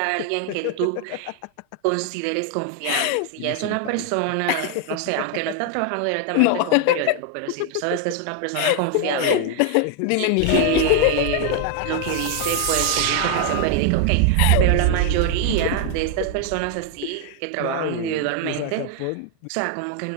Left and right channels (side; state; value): both; different; correlation 0.00